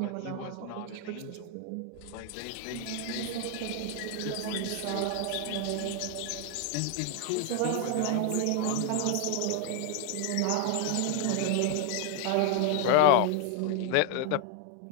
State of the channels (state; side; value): different; both; correlation 0.00